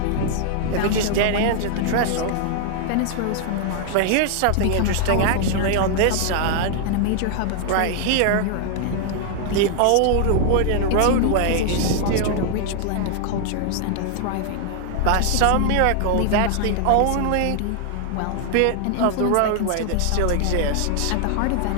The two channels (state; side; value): different; both; correlation 0.00